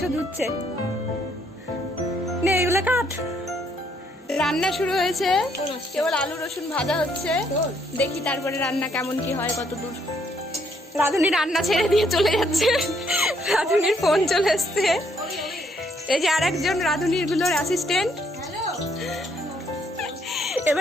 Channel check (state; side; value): normal; both; correlation 0.70